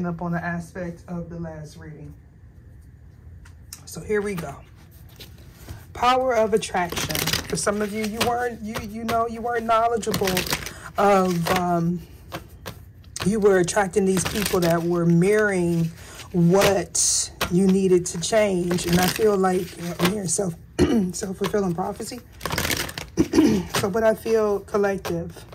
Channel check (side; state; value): both; identical; correlation 1.00